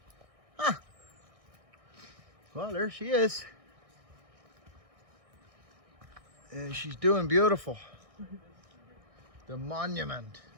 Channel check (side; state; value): left; late; 1.6 ms